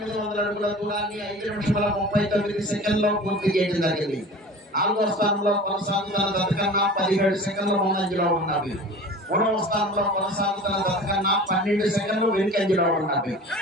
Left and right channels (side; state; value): both; normal; correlation 0.39